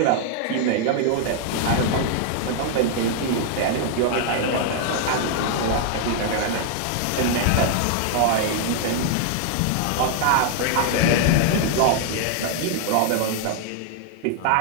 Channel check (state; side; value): different; both; correlation 0.00